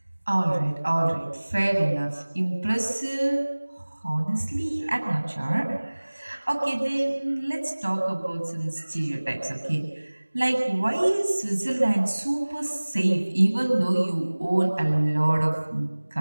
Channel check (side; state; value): both; inverted; correlation -1.00